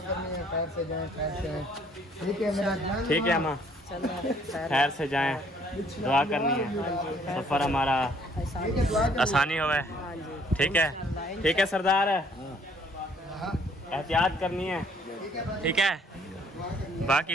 करनी है खैर से जाएं खैर से आएं। ठीक है मेरा ध्यान ठीक है अम्मा खैर से जाएं, दुआ करनी है सफ़र हमारा ठीक है, दुआ आसानी होवे। ठीक है सरदार, एहतियात करनी है ठीक है,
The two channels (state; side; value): normal; both; correlation 0.62